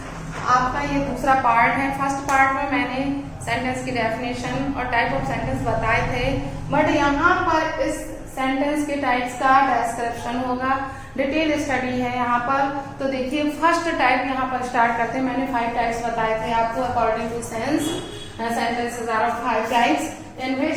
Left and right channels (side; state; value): both; identical; correlation 1.00